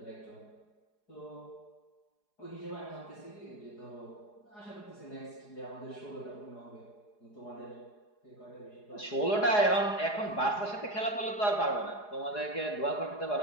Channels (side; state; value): right; late; 4.8 ms